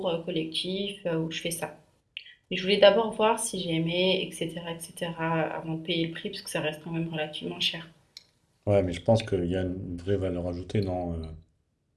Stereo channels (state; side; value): identical; both; correlation 1.00